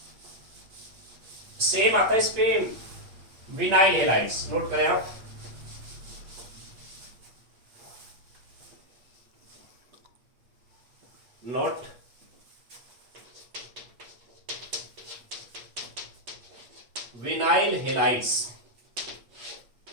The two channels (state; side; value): late; left; 8.5 ms